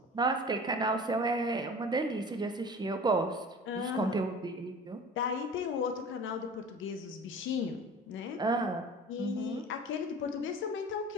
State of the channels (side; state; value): both; normal; correlation 0.40